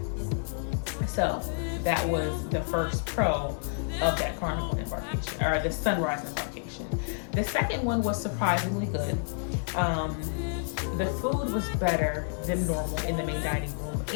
So that was the first pro of that Carnival embarkation, or the sunrise embarkation. The second one was surprisingly good. The food was better than normal in the main dining room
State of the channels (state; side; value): silent; right; 58 dB below the other